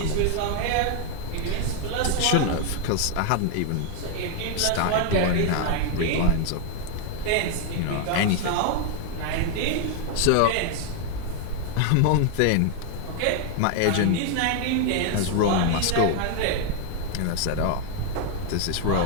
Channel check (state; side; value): different; both; correlation 0.00